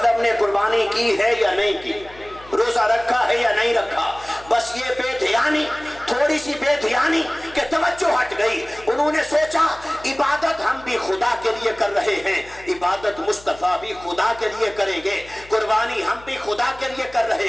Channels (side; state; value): left; noise; hum, 22 dB below the sound